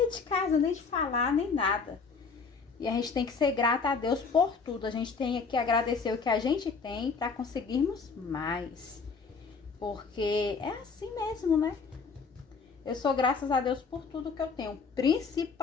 de casa, nem de falar, nem nada. E a gente tem que ser grata a Deus por tudo. A gente tem que agradecer o que a gente tem para conseguirmos mais. Porque é assim mesmo, né? Eu sou graças a Deus por tudo que eu tenho.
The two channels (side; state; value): right; quieter; 5.0 dB